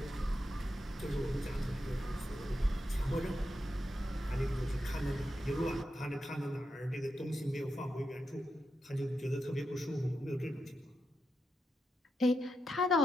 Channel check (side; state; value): both; normal; correlation 0.86